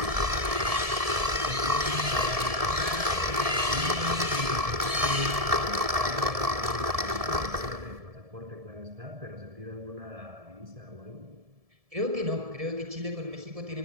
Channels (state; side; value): late; left; 1.7 ms